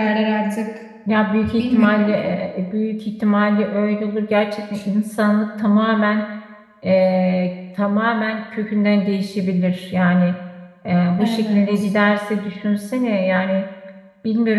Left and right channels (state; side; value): identical; both; correlation 1.00